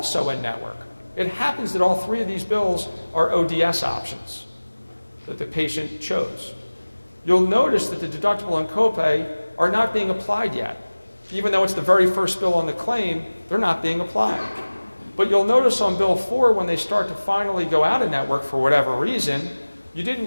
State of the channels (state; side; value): inverted; both; correlation -1.00